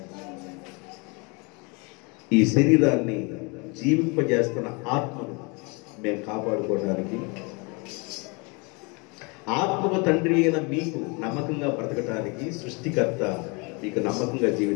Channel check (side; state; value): right; quieter; 30.0 dB